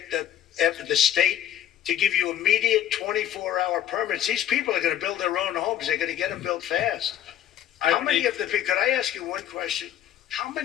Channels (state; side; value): quieter; right; 11.2 dB